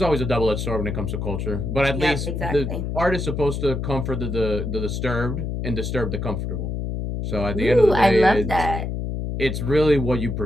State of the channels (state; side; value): noise; left; hum, 3 dB below the sound